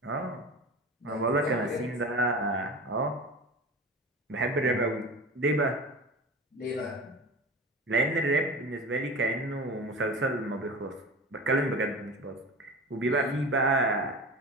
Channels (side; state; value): both; normal; correlation 0.33